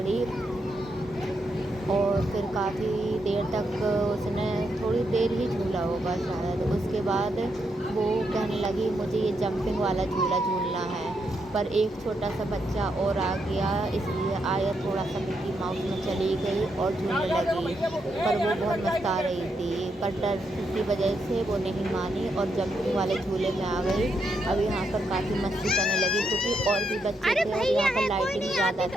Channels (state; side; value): normal; both; correlation 0.80